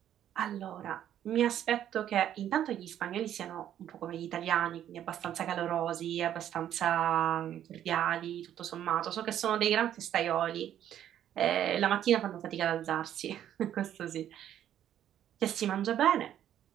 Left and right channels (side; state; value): left; quieter; 10.8 dB